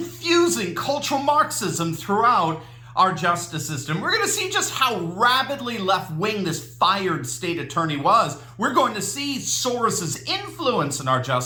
cultural Marxism throughout our justice system. We're going to see just how rabidly left-wing this fired state attorney was. We're going to see Soros's influence in our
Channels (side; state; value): both; identical; correlation 1.00